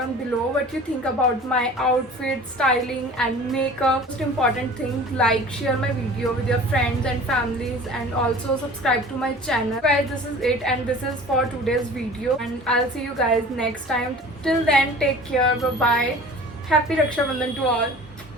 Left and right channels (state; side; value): normal; both; correlation 0.43